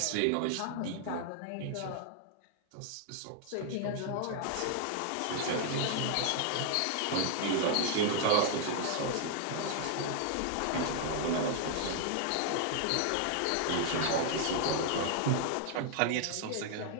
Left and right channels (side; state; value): both; different; correlation 0.00